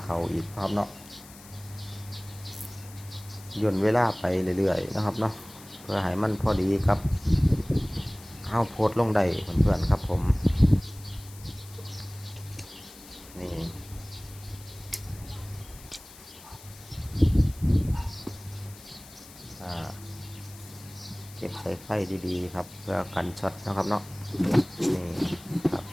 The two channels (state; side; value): noise; left; hiss, 19 dB below the sound